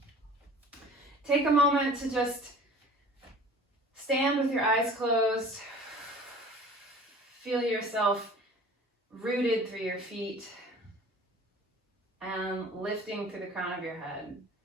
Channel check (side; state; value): both; normal; correlation 0.44